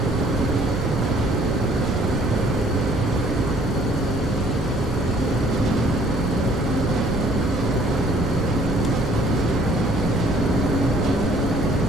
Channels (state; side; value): normal; both; correlation 0.59